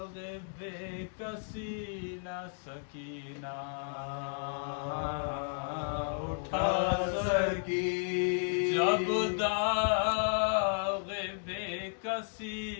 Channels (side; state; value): right; silent; digital silence